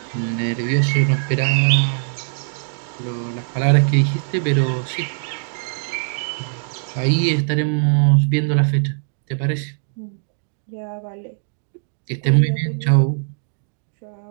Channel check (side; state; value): left; silent; digital silence